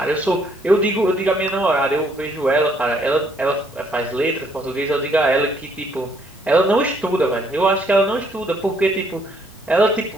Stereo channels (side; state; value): both; normal; correlation 0.68